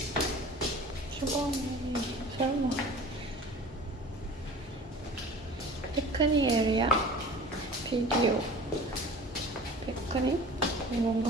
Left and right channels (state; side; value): normal; both; correlation 0.41